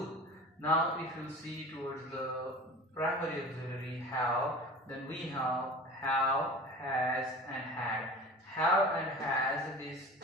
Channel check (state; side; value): normal; both; correlation 0.37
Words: Now if you see towards the primary auxiliary have, then we have, has and had. Have and has,